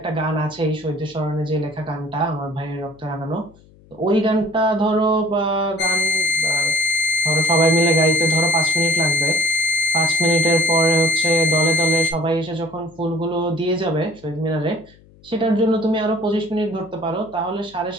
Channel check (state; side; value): noise; left; hum, 27 dB below the sound